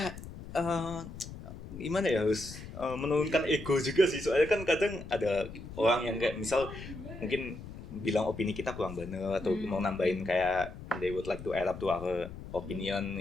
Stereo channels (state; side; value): noise; left; rumble, 12 dB below the sound